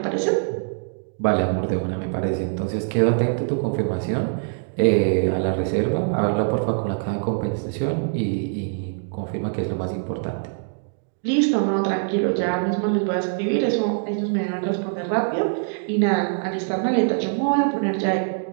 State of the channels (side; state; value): left; silent; digital silence